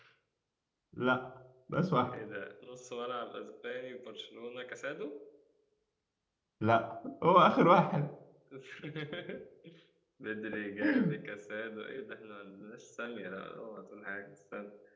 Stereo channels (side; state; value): both; identical; correlation 1.00